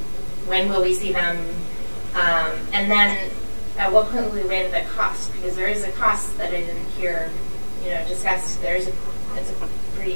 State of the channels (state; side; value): inverted; both; correlation -1.00